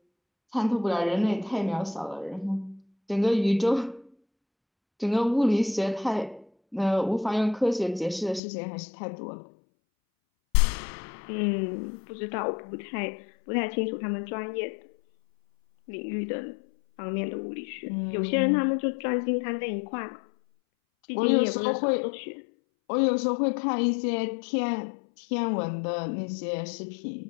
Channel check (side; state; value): right; drops out; at 8.4 s